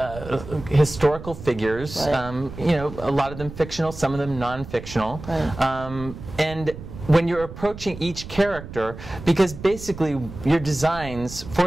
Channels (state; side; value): noise; right; rumble, 13 dB below the sound